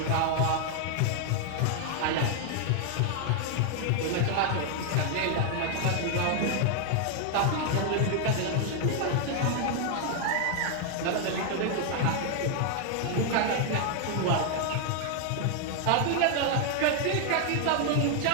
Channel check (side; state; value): both; different; correlation 0.00